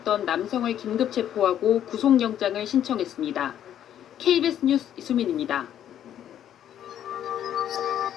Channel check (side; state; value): right; quieter; 10.5 dB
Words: 남성을 긴급 체포하고 구속영장을 신청했습니다. KBS 뉴스 이수민입니다.